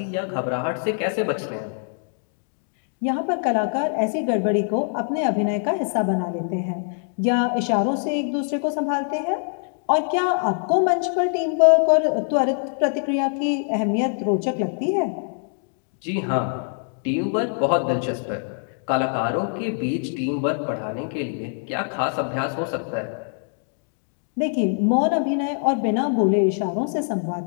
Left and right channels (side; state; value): right; silent; 63 dB below the other